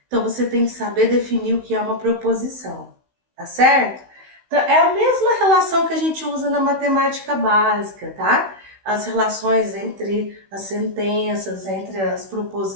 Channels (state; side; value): late; left; 16 ms